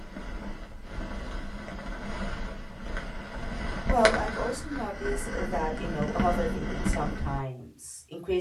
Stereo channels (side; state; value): both; identical; correlation 1.00